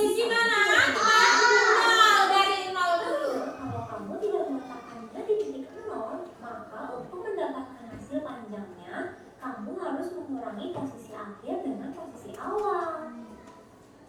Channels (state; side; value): identical; both; correlation 1.00